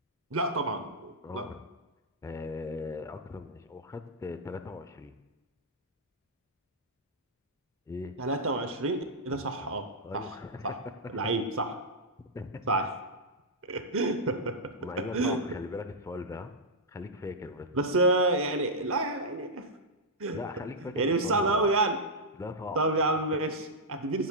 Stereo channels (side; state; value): both; normal; correlation -0.07